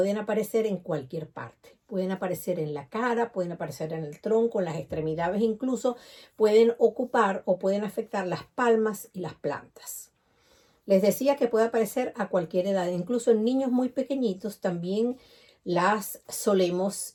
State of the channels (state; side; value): identical; both; correlation 1.00